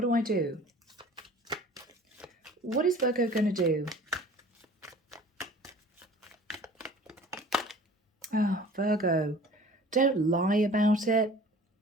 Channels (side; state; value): both; normal; correlation 0.45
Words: do I do? What is Virgo going to do? Oh, Virgo, don't lie about it.